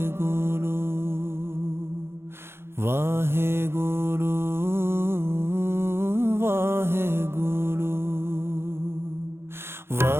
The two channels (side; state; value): left; late; 0.12 ms